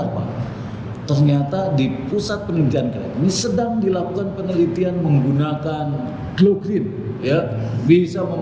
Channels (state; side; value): identical; both; correlation 1.00